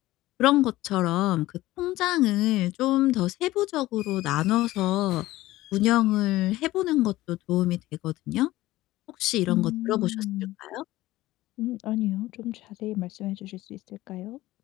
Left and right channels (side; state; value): right; quieter; 17.1 dB